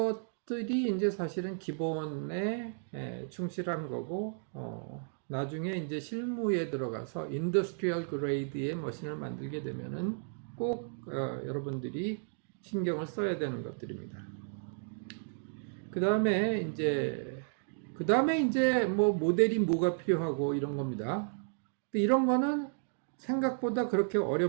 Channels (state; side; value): silent; left; digital silence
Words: 이제 사실은 기본에 충실한 거고, 나중에 이제 실무에 들어가서 인더스트리얼 그레이드의 머신을 만들게 되면은 꼭 여러분들이 신경을 써야 되는 것들입니다. 그 다음에 이제 뭐 모델이 뭐가 필요하고 이런 겁니다. 근데 이런 거는 생각보다 그렇게